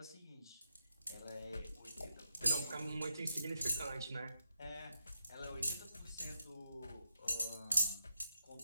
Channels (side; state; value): both; inverted; correlation -0.83